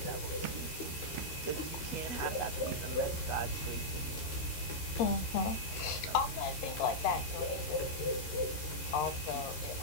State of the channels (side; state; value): right; late; 13 ms